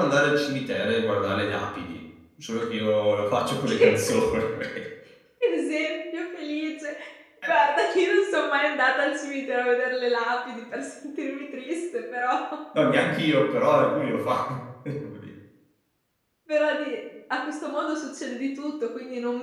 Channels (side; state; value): both; identical; correlation 1.00